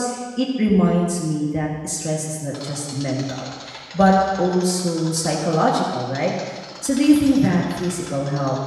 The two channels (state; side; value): identical; both; correlation 1.00